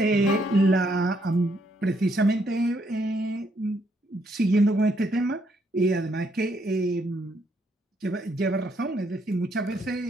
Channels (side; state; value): both; normal; correlation 0.73